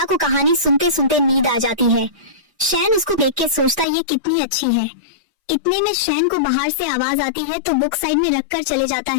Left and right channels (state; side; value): drops out; right; at 3.9 s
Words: को कहानी सुनते सुनते नींद आ जाती है। शैन उसको देख के सोचता ये कितनी अच्छी है। इतने में शैन को बाहर से आवाज आती है तो बुक साइड में रखकर चले जाता